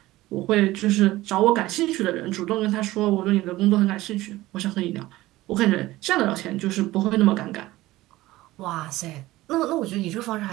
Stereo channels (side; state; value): left; quieter; 17.5 dB